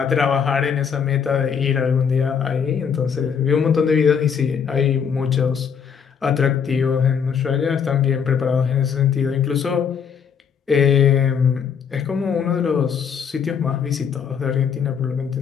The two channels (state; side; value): quieter; right; 7.0 dB